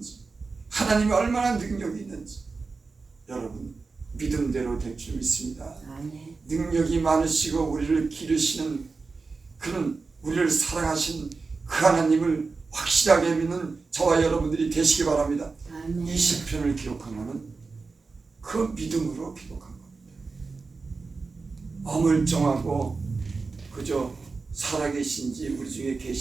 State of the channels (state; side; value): quieter; left; 4.2 dB